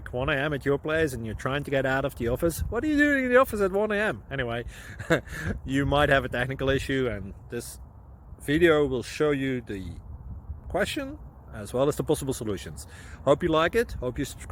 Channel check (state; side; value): identical; both; correlation 1.00